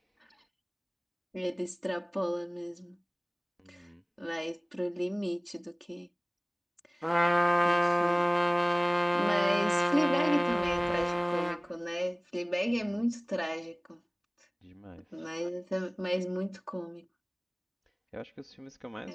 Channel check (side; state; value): both; identical; correlation 1.00